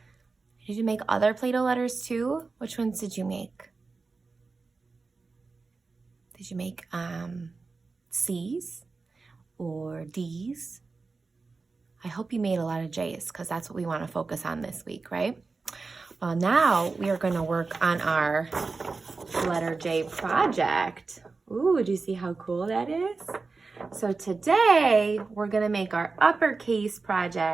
Did you make other Play-Doh letters too? Which ones did you make? Did you make C's or D's? I hope you made a lot of J's because that's what we want to focus on this week, right? Well, now we are going to work on our letter J project. Ooh, do you see how cool that is? So today we're going to make our uppercase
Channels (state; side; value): quieter; left; 4.1 dB